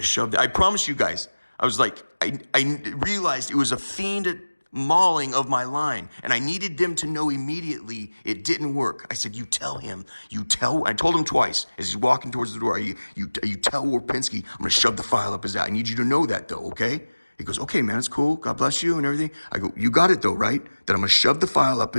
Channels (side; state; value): both; inverted; correlation -1.00